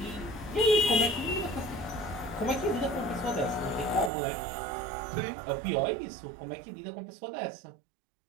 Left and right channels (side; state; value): left; drops out; at 4.1 s